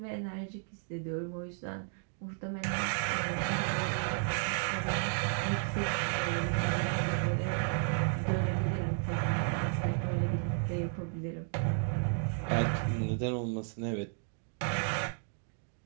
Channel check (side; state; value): left; silent; 56 dB below the other